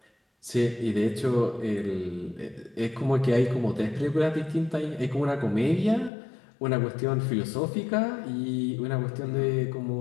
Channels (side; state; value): right; drops out; at 6.1 s